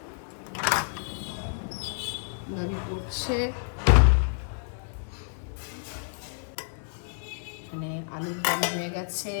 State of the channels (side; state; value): right; silent; digital silence